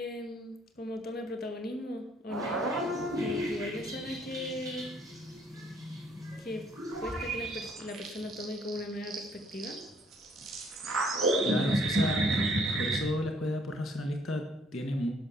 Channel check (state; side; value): normal; both; correlation 0.63